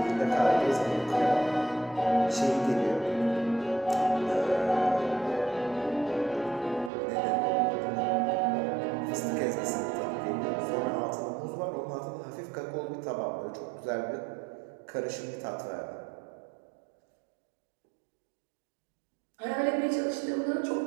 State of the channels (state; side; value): drops out; left; at 6.9 s